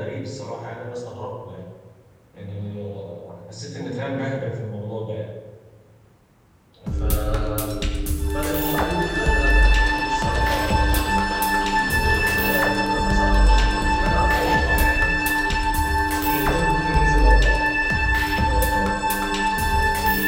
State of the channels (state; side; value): identical; both; correlation 1.00